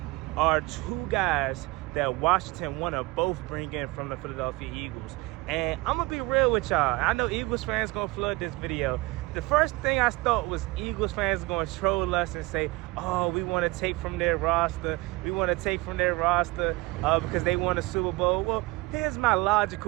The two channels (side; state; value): left; quieter; 21.9 dB